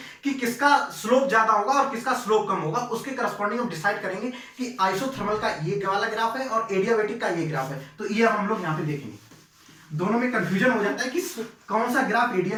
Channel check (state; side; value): identical; both; correlation 1.00